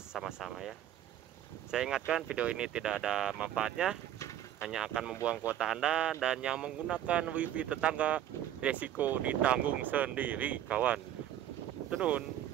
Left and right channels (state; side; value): quieter; left; 11.5 dB